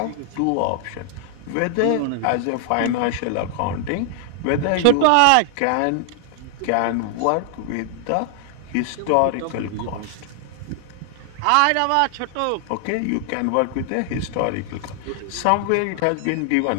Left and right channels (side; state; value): both; different; correlation 0.00